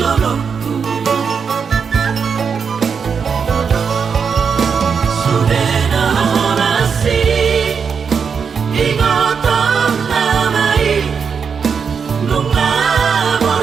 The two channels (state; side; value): quieter; left; 6.2 dB